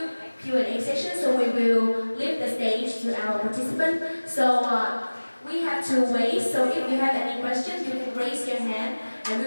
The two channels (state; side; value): inverted; both; correlation -1.00